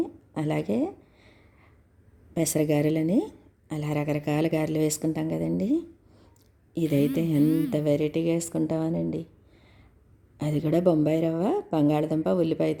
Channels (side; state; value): both; identical; correlation 1.00